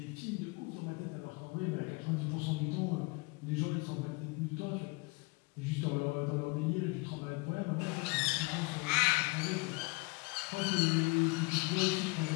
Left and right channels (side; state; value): right; quieter; 27.7 dB